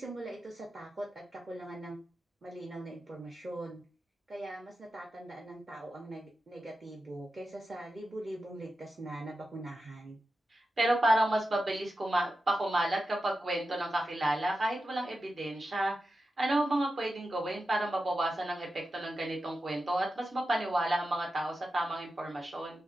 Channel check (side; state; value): both; normal; correlation 0.91